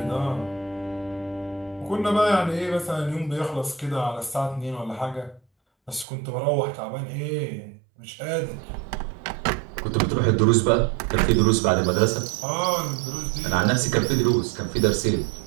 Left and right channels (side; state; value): left; drops out; at 6.1 s